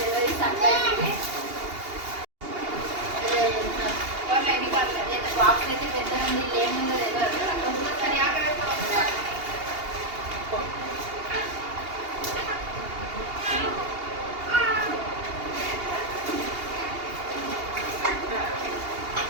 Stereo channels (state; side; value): late; left; 2.8 ms